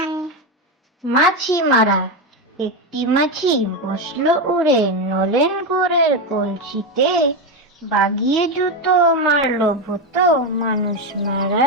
মাছি মারা একটি মাছি বসলো উড়ে নলেন গুড়ের কলসিতে, বাগিয়ে জুতো মারলো ভূত মানুষ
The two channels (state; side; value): normal; both; correlation 0.11